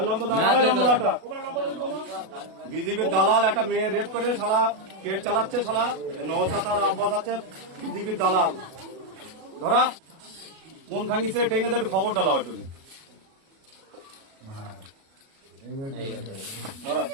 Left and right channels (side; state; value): left; late; 37 ms